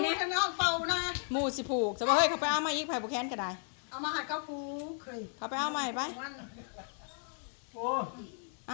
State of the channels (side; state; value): right; silent; 55 dB below the other